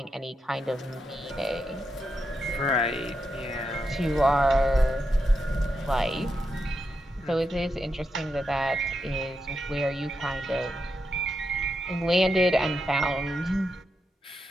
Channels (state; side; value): normal; both; correlation 0.85